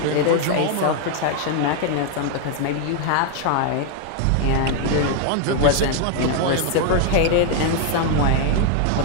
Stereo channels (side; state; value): both; different; correlation 0.00